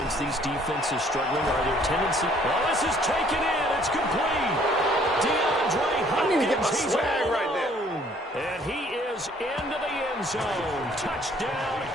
These defenses struggling. Are there tendency? Well, this is taken in. It's complete. DeAndre Hopkins. He's all right there. And he is into the end zone. Touchdown,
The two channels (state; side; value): normal; both; correlation 0.60